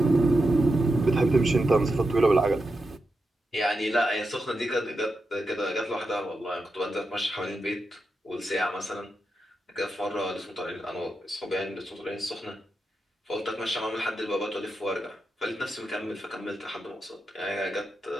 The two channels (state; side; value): normal; both; correlation 0.88